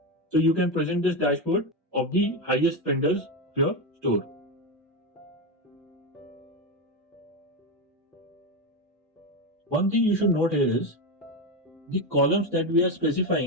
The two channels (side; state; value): both; normal; correlation 0.13